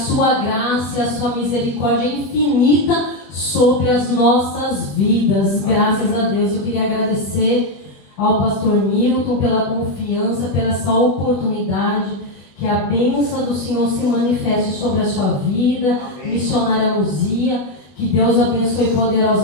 graça e a sua misericórdia é infinita sobre as nossas vidas. Graças a Deus. Eu queria agradecer ao pastor Milton pela confiança, pela essa oportunidade. Que a bênção do Senhor se manifeste sobre a sua vida. Amém. Missionária Luzia, que Deus abençoe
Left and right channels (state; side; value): late; right; 21 ms